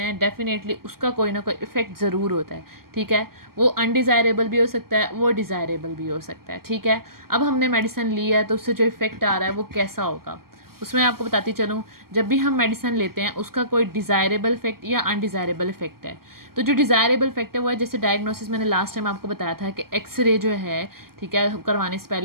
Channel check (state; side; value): late; left; 0.93 ms